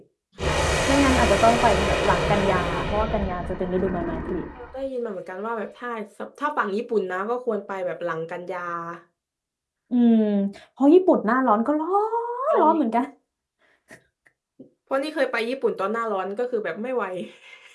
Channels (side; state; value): both; identical; correlation 1.00